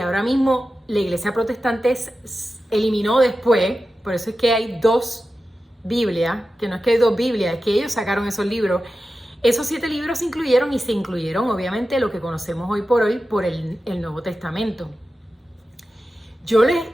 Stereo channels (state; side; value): normal; both; correlation 0.92